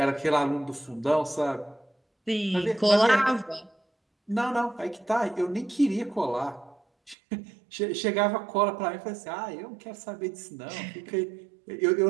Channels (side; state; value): left; drops out; at 7.2 s